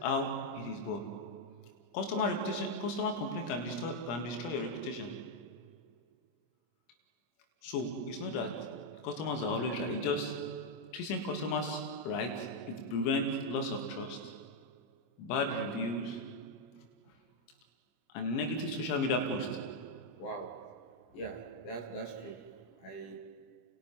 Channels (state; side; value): late; right; 25 ms